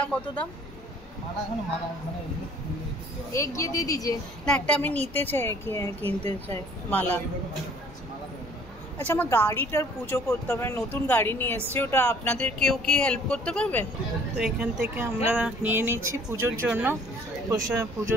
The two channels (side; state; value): both; normal; correlation 0.56